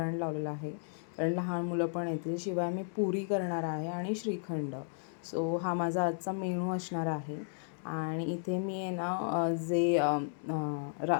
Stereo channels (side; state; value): right; silent; digital silence